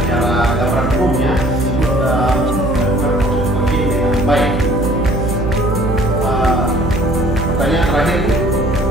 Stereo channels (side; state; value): right; noise; hum, 4 dB below the sound